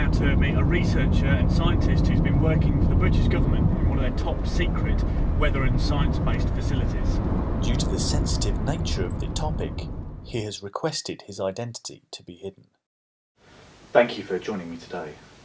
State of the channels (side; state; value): both; identical; correlation 1.00